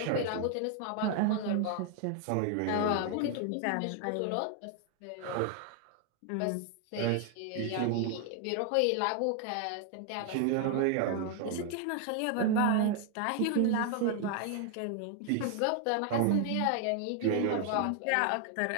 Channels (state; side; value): different; both; correlation 0.00